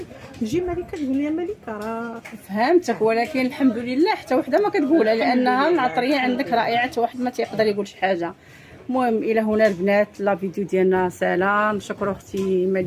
تجي ملكه تقول لي ملكه راه فهمتك، ولكن الحمد لله حتى وحده ما كتقولها لانها العطريه عندك رائعه، حتى واحد ما تيقدر يقول شي حاجه. المهم الى هنا البنات لا فيديو ديالنا سلام. نشكر اختي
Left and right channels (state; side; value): identical; both; correlation 1.00